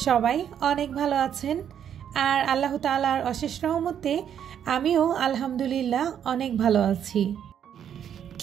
সবাই অনেক ভালো আছেন, আর আল্লাহ তাআলার অশেষ রহমতে আমিও আলহামদুলিল্লাহ অনেক ভালো আছি।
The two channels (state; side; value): quieter; left; 9.1 dB